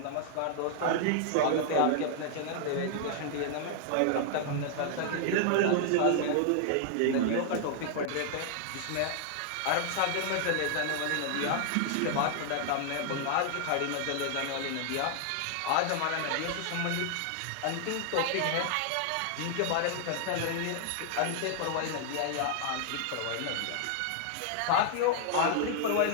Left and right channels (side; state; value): both; different; correlation 0.00